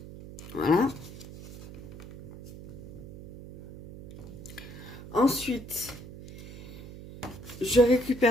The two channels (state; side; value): noise; right; hum, 14 dB below the sound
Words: Voilà. Ensuite, je